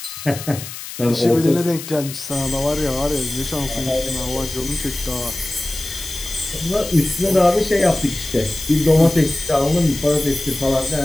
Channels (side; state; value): left; noise; hiss, 11 dB below the sound